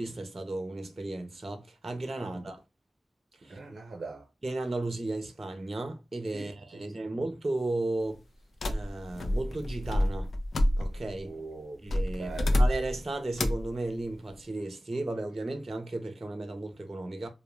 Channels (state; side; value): normal; both; correlation 0.96